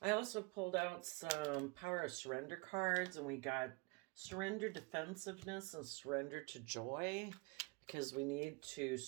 I also pulled out some Power of Surrender cards, and we got Surrender Defensiveness and Surrender to Joy, because we need to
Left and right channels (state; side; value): quieter; left; 27.3 dB